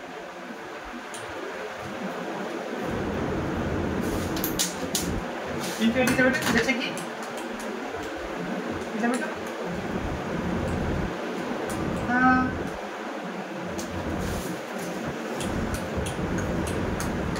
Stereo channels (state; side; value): identical; both; correlation 1.00